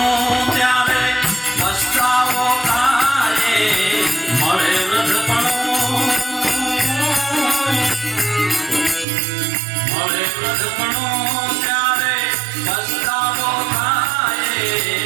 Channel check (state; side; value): drops out; left; at 9.1 s